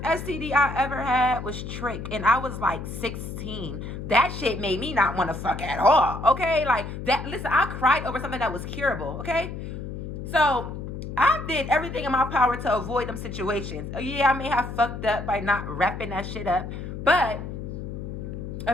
STD I ever had was Trick, and I was, like, 16. That shit made me not want to fuck at all, okay? Like, listen, I cried over something that was curable, okay? So I did everything in my power to avoid them situations. Yeah, I may have fucked up by not wrapping that shit up, but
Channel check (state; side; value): noise; left; hum, 7 dB below the sound